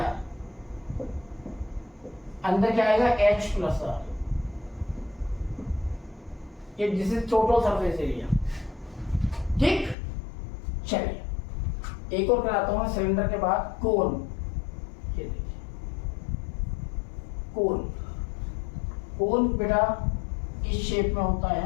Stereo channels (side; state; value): right; drops out; at 10.0 s